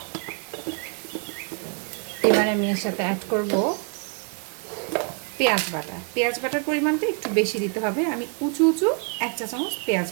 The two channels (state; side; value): quieter; left; 38.8 dB